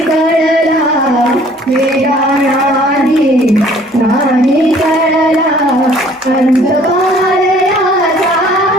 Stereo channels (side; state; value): both; normal; correlation 0.56